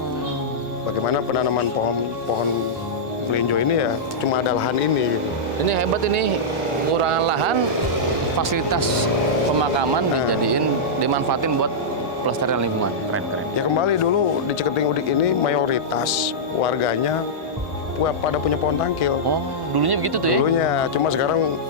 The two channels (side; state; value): both; normal; correlation -0.10